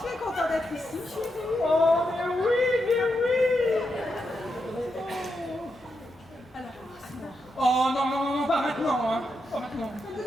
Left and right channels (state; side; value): normal; both; correlation 0.84